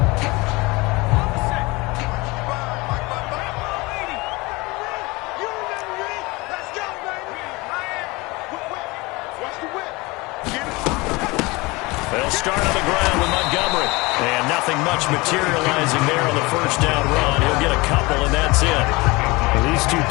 They'll start on the ground with Montgomery. And nothing much materializing there on the first down run. He'll get a couple, and that's it. Well, these two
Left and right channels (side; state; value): right; quieter; 23.7 dB